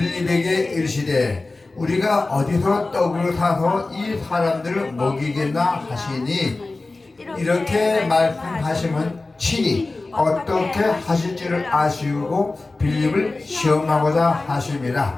이르시되 우리가 어디서 떡을 사서 이 사람들을 먹이겠나 하시니, 이렇게 말씀하시면 친히 어떻게 하실지를 아시고 빌립을 시험하고자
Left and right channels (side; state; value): right; quieter; 3.3 dB